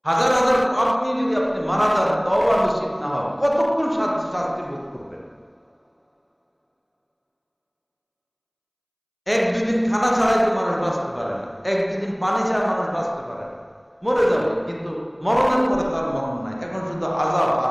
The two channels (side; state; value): both; identical; correlation 1.00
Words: হাজার হাজার পাপ নিয়ে যদি আপনি মারা যান, তওবা নসিব না হয়, কতক্ষণ শাস্তি ভোগ করবেন? 1-2 দিন খানা ছাড়াই তো মানুষ বাঁচতে পারে না, 1-2 দিন পানি ছাড়া মানুষ বাঁচতে পারে না। মরে যাবে, কিন্তু মরণের পরে তার মরণ নাই, এখন শুধু আযাব